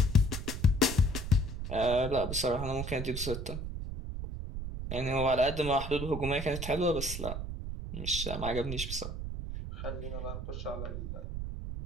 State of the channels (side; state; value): right; noise; rumble, 5 dB below the sound